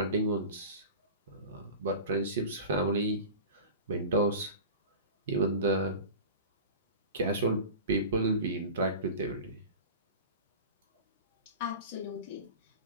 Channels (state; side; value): inverted; both; correlation -0.33